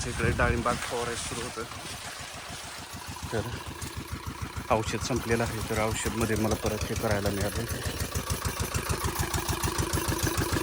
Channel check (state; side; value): identical; both; correlation 1.00